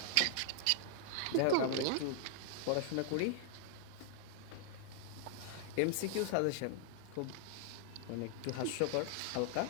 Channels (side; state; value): both; different; correlation -0.01